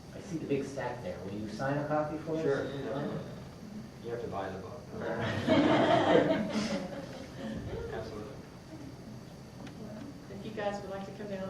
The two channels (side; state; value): both; identical; correlation 1.00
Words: I see the big stack there. Will you sign a copy for us? Sure. You have to buy the book. Absolutely. If you guys would like to come down